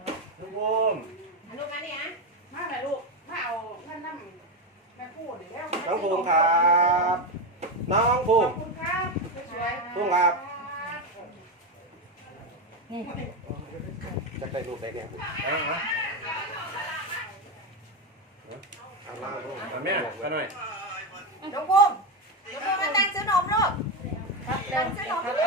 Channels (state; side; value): normal; both; correlation 0.12